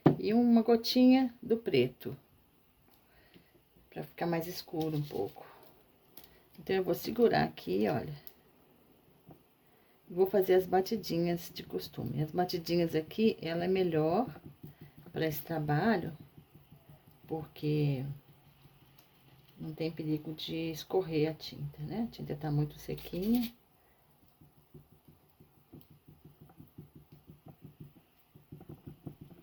e uma gotinha do preto, para ficar mais escuro um pouco. Então, eu vou segurar aqui, olha. Vou fazer as batidinhas de costume. As batidinhas aqui, ela é melhor para esse trabalho, porque não tem perigo de escorrer a tinta, né? A tinta tá muito sequinha.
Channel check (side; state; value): both; identical; correlation 1.00